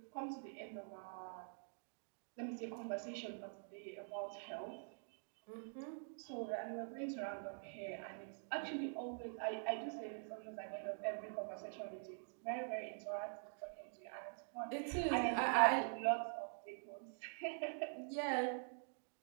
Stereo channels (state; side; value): silent; left; digital silence